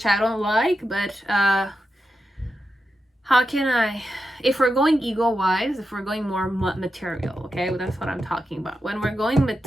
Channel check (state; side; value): normal; both; correlation 0.88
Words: I don't like, but how can I, if we're going ego wise, if we're going more material, okay, well, that's what I'm talking about. When we're going